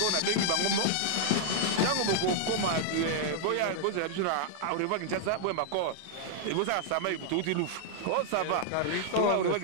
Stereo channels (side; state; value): both; different; correlation -0.01